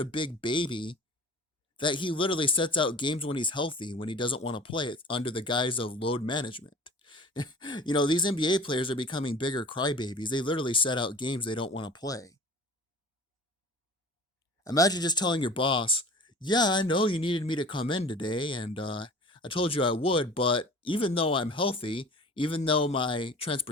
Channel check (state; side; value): normal; both; correlation 0.42